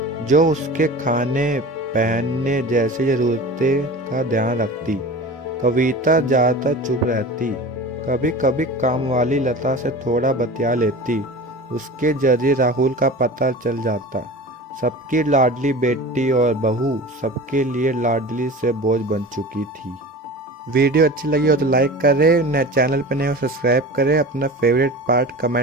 जो उसके खाने पहनने जैसी जरूरतें का ध्यान रखती। कविता ज्यादातर चुप रहती। कभी कभी काम वाली लता से थोड़ा बतिया लेती। उसके जरिए राहुल का पता चल जाता। सबकी लाडली बेटी और बहू सबके लिए लाडली से बोझ बन चुकी थी। वीडियो अच्छी लगी हो तो लाइक करें, नए चैनल पर नए हो सब्सक्राइब करें, अपना फेवरेट पार्ट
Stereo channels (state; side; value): normal; both; correlation 0.35